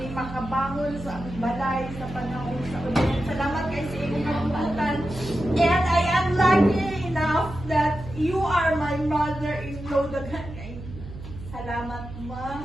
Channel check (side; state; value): right; noise; hum, 12 dB below the sound